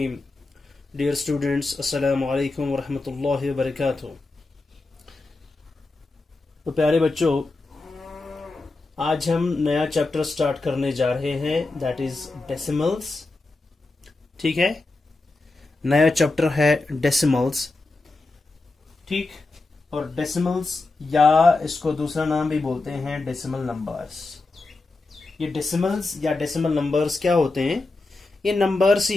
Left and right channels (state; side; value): quieter; right; 3.3 dB